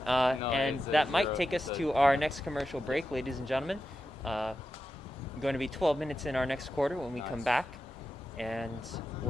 And that might take us to our next commercial break, ladies and gentlemen. Going to be 12 minutes in our next quarter when we come back. And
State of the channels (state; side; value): normal; both; correlation 0.90